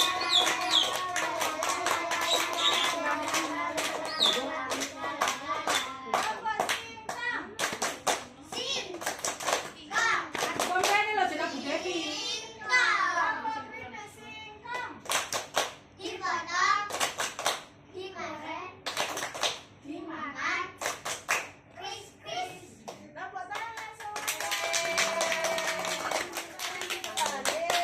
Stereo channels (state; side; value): identical; both; correlation 1.00